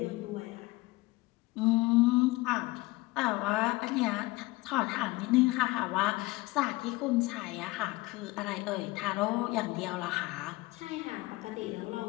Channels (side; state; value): right; quieter; 21.5 dB